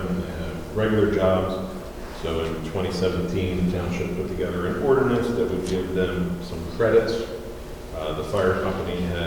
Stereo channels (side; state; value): both; identical; correlation 1.00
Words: they have regular jobs. So in 2017, the township put together an ordinance that would give them some credits. The fire company